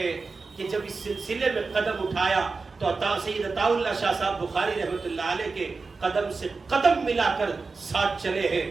کہ جب اس سلسلے میں قدم اٹھایا تو سید عطا اللہ شاہ صاحب بخاری رحمۃ اللہ علیہ کے قدم سے قدم ملا کر ساتھ چلے ہیں،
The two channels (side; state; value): left; quieter; 4.2 dB